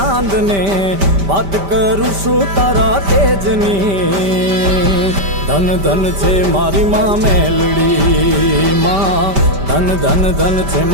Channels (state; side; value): late; left; 5.1 ms